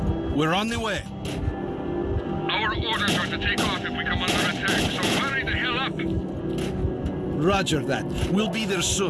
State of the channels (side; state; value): both; identical; correlation 1.00